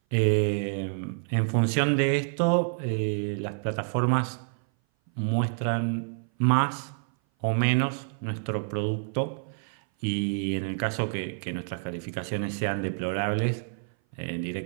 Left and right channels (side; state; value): left; silent; 57 dB below the other